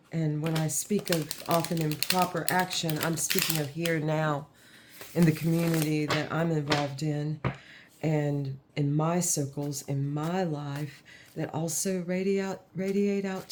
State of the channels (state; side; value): identical; both; correlation 1.00